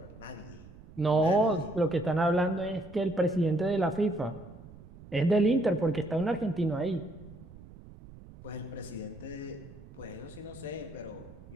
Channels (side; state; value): right; noise; rumble, 18 dB below the sound